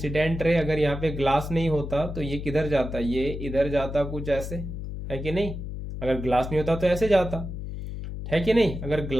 रे, अगर यहाँ पे ग्लास नहीं होता तो ये किधर जाता, ये इधर जाता कुछ ऐसे, है कि नहीं। अगर ग्लास नहीं होता तो ऐसे जाता, है कि नहीं। अगर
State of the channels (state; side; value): noise; left; hum, 7 dB below the sound